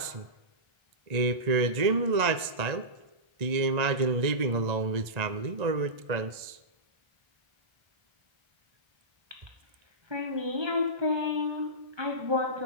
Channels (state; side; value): late; left; 1.8 ms